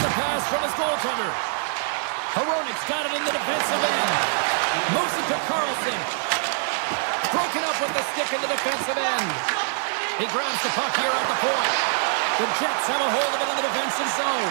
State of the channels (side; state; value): left; silent; digital silence